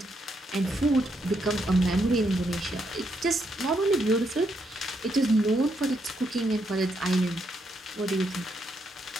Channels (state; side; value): normal; both; correlation 0.78